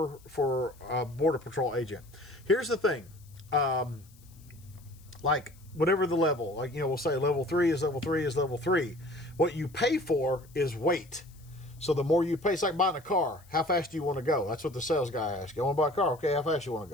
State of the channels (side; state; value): left; noise; hiss, 27 dB below the sound